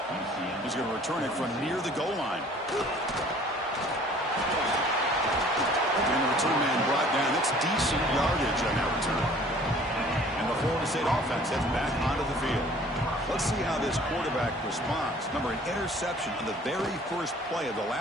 He's going to return it from near the goal line. And the return man brought down. That's decent yardage on that return. And the Florida State offense heads back onto the field. Let's see how this quarterback responds. Remember, an interception on the very first play of the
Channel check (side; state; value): both; normal; correlation 0.52